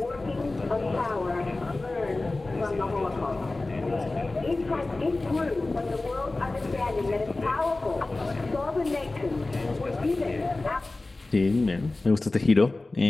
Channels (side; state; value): right; quieter; 3.1 dB